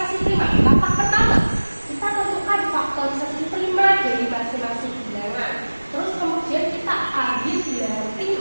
prima. Langkah pertama, kita tentukan faktorisasi prima dari masing-masing bilangan. Terus kemudian kita ambil bilangan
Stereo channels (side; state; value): both; inverted; correlation -1.00